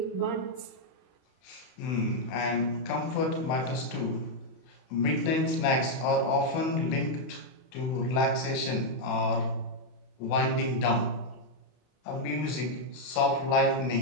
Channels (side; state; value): right; late; 31 ms